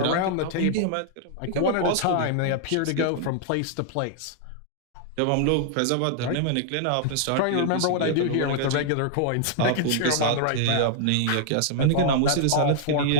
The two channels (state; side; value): different; both; correlation -0.01